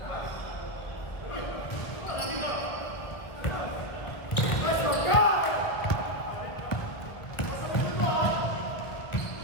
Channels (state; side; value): late; right; 1.8 ms